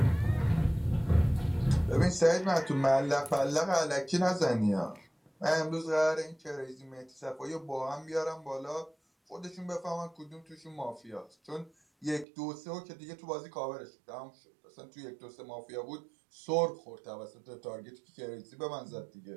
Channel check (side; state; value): left; drops out; at 12.2 s